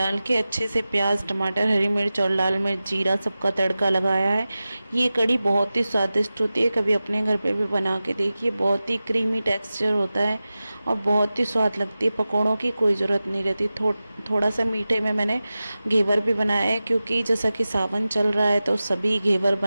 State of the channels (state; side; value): inverted; both; correlation -0.96